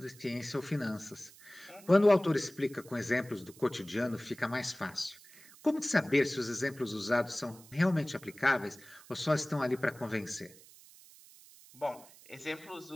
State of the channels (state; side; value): noise; right; hiss, 22 dB below the sound